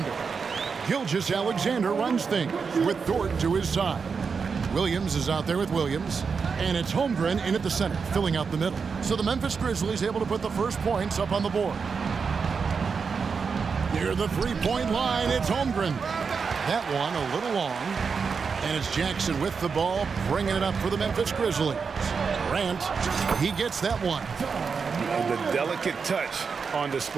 Gilgeous-Alexander runs things with Dort to his side. Williams is out there with Williams. And it's Holmgren in at the center, filling out the middle. So the Memphis Grizzlies able to put the first points up on the board. Near the three-point line, it's Holmgren. That one a little long. And it's Jackson with the ball, bringing it up for the Memphis Grizzlies. Grant, he gets that one. And the delicate touch on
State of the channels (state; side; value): quieter; left; 5.5 dB